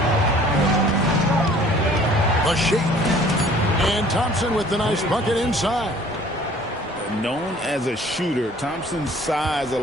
The shake. And Thompson with the nice bucket inside. Known as a shooter, Thompson's size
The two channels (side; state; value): both; normal; correlation 0.53